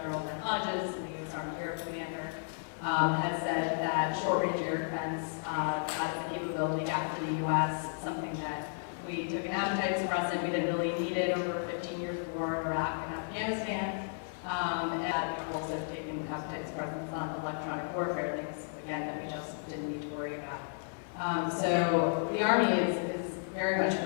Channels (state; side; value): silent; right; digital silence